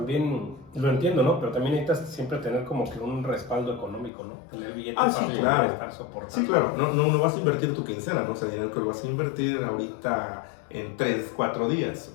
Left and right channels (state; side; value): drops out; right; at 4.1 s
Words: lo entiendo, ¿no? Pero también necesitas siempre tener como que un respaldo económico, ¿no? Tener billetes para poder estar soportando. Sí, claro, no vas a invertir tu quincena, ¿no? O sea, dinero que lo vas a invertir ahorita en 3, 4 días.